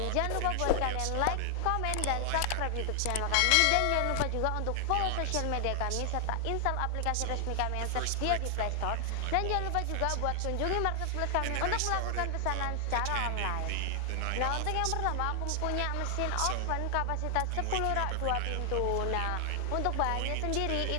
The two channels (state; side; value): different; both; correlation 0.00